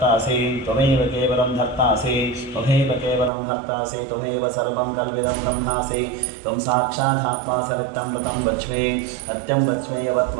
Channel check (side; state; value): left; drops out; at 3.3 s